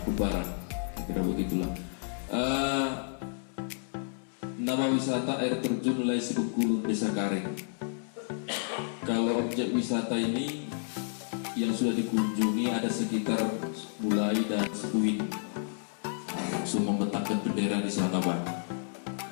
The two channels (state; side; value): silent; right; digital silence